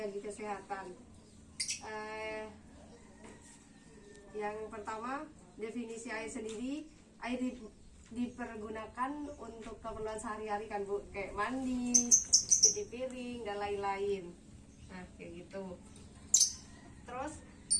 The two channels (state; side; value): identical; both; correlation 1.00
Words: kesehatan. Yang pertama, definisi air sendiri. Air dipergunakan untuk keperluan sehari-hari kan Bu, kayak mandi, cuci piring dan lain-lain. Nah kayak gitu. Terus